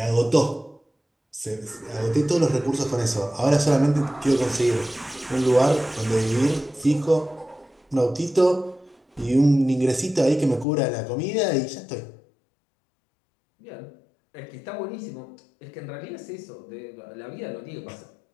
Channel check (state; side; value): drops out; right; at 10.7 s